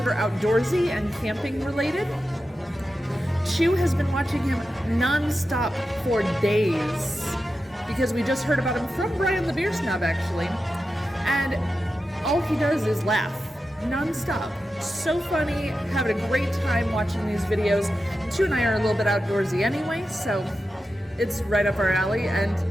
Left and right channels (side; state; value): both; normal; correlation 0.91